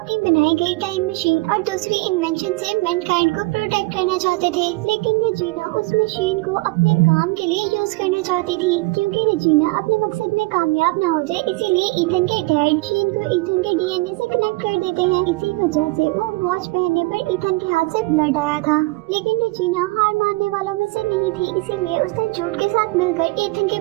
बनाई गई टाइम मशीन और दूसरी इन्वेंशन से मैनकाइंड को प्रोटेक्ट करना चाहते थे, लेकिन रेजिना उस मशीन को अपने काम के लिए यूज करना चाहती थी। क्योंकि रेजिना अपने मकसद में कामयाब न हो जाए, इसीलिए ईथन के डैड मशीन को ईथन के डीएनए से कनेक्ट कर देते हैं। इसी वजह से वो वॉच पहनने पर ईथन के हाथ से ब्लड आया था। लेकिन रेजिना हार मानने वालों में से नहीं थी, इसीलिए उसने जूड के साथ मिलकर ईथन के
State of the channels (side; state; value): left; quieter; 23.7 dB